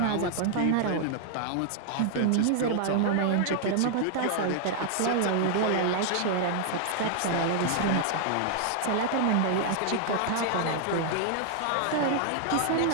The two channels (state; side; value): different; both; correlation 0.00